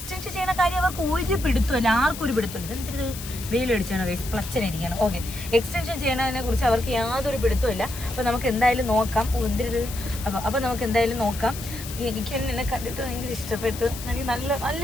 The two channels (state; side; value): noise; left; hiss, 11 dB below the sound